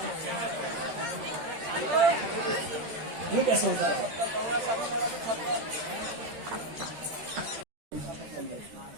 ये कैसे होता है?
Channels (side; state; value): left; late; 13 ms